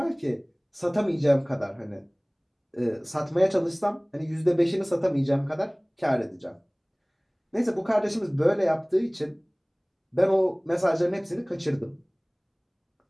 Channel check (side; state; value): both; identical; correlation 1.00